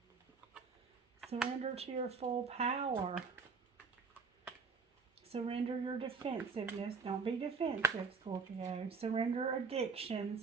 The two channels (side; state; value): left; quieter; 5.2 dB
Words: Surrender to your full power. Surrender your defensiveness. Don't be defensive, Scorpio. Surrender